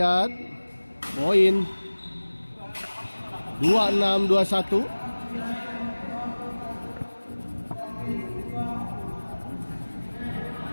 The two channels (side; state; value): both; inverted; correlation -1.00